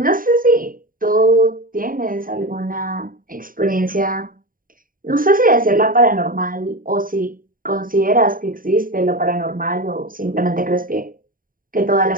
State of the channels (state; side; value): late; left; 0.41 ms